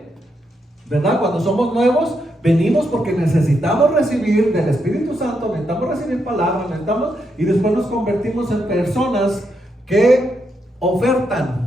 ¿verdad? Cuando somos nuevos, venimos porque necesitamos recibir del Espíritu Santo, necesitamos recibir palabras, y después nos convertimos en personas que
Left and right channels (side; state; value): both; normal; correlation 0.81